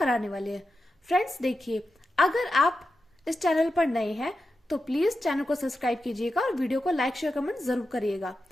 वाले हैं। फ्रेंड्स देखिए, अगर आप इस चैनल पर नए हैं तो प्लीज चैनल को सब्सक्राइब कीजिएगा और वीडियो को लाइक शेयर कमेंट जरूर करिएगा।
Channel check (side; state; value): both; normal; correlation 0.90